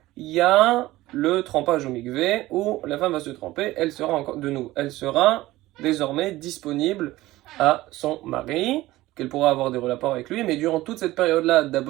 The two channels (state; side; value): quieter; left; 17.3 dB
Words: il y a le trempage au mikvé où la femme va se tremper, elle sera désormais disponible à son mari, qu'elle pourra avoir des rapports avec lui, mais durant toute cette période-là d'à